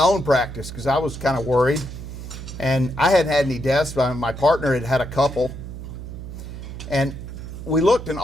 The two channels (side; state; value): right; noise; hum, 10 dB below the sound